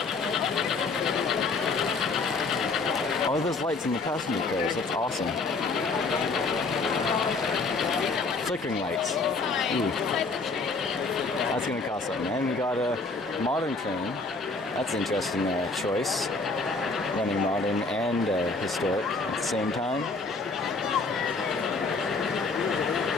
Oh, there's lights in the passenger cars. That's awesome. Flickering lights. Ooh. That's gonna cost something. And we got a modern train. That's an interesting choice. Running modern and historic at the same time.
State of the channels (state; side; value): quieter; right; 3.9 dB